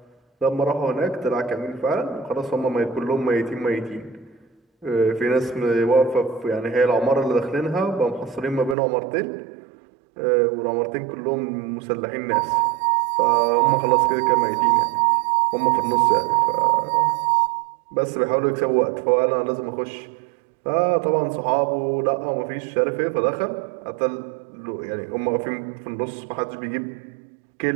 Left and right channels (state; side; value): drops out; left; at 8.8 s